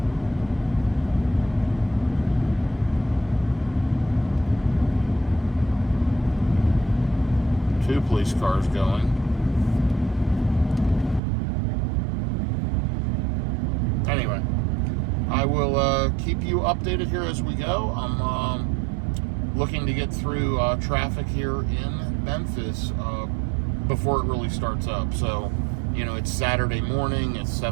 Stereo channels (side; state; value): left; drops out; at 11.2 s